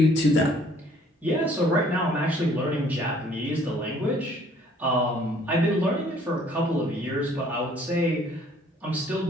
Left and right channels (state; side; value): normal; both; correlation 0.58